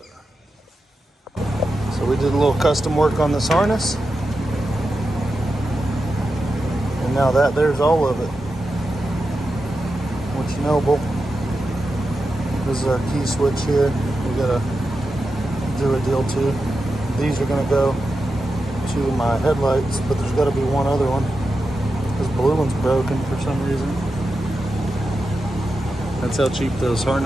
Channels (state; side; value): normal; both; correlation 0.89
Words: we did a little custom work on this harness. And now there's all of it. What you know, bull. This is our key switch here. We gotta do a deal too. These are gonna go to my headlights, but there's gotta be one other one. This blue one's broken for some reason. That's how cheap those